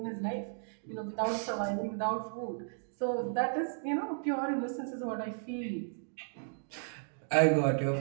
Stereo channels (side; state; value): left; silent; digital silence